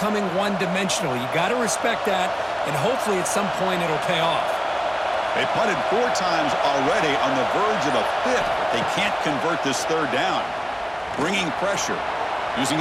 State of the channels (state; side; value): identical; both; correlation 1.00